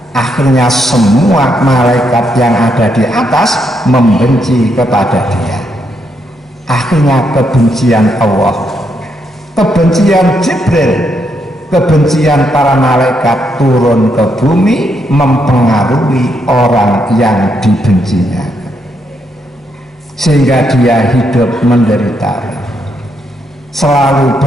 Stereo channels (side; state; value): both; normal; correlation 0.78